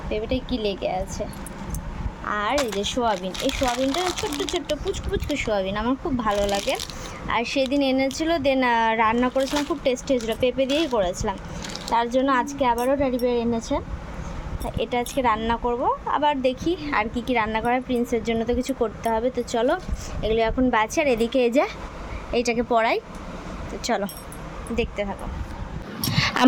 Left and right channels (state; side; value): identical; both; correlation 1.00